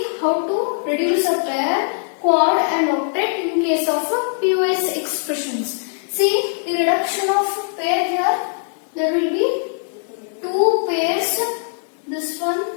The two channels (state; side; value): silent; right; digital silence